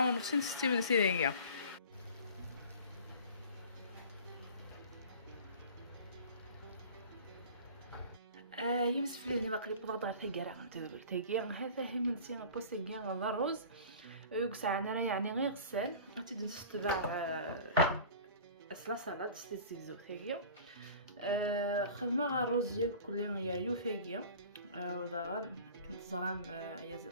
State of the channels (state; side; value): inverted; both; correlation -0.42